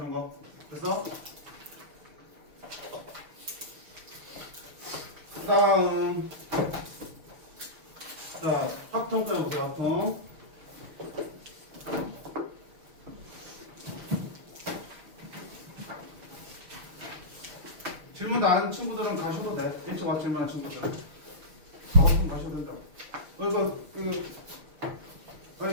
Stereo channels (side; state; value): left; late; 5.5 ms